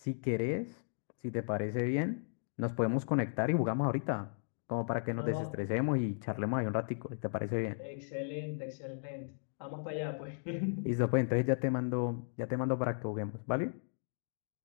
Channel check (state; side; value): silent; right; digital silence